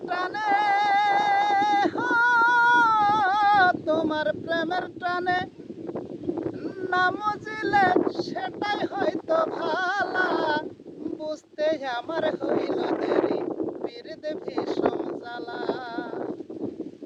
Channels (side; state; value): both; identical; correlation 1.00